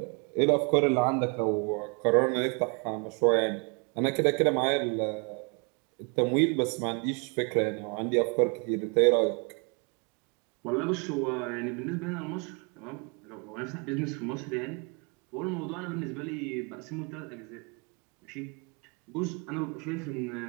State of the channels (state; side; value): quieter; left; 33.8 dB